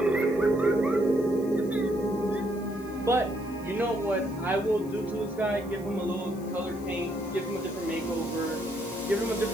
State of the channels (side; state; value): left; noise; hiss, 22 dB below the sound